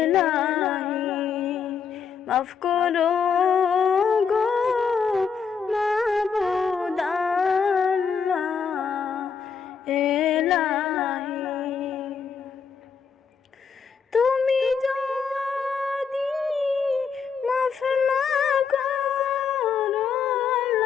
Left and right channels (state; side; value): quieter; right; 6.2 dB